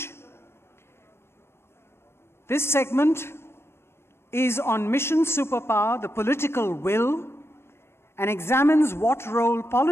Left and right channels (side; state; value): right; late; 0.12 ms